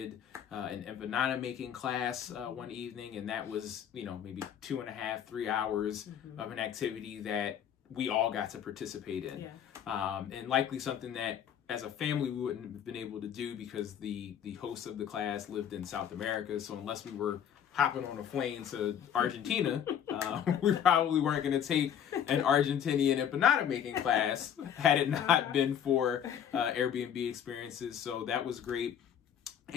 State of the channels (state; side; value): quieter; right; 9.0 dB